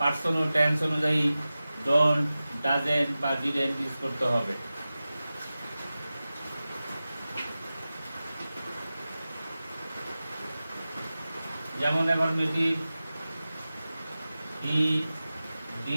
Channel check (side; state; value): both; inverted; correlation -0.95